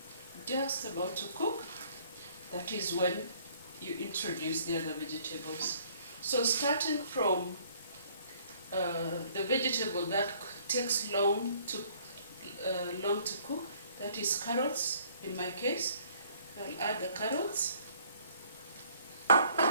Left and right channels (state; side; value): inverted; both; correlation -0.59